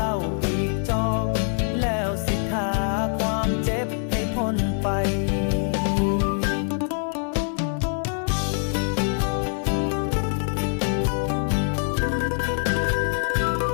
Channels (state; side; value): silent; right; 57 dB below the other